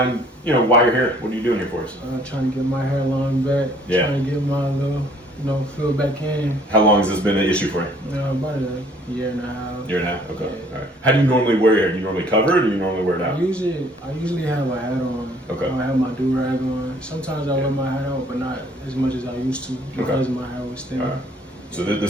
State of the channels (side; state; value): both; normal; correlation 0.58